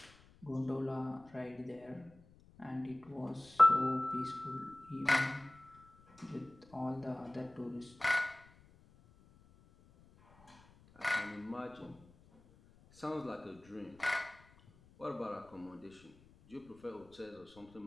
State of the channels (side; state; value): left; noise; rumble, 26 dB below the sound